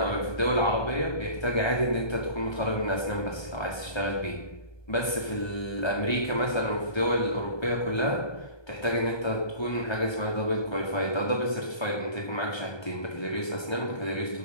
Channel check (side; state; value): right; late; 1.2 ms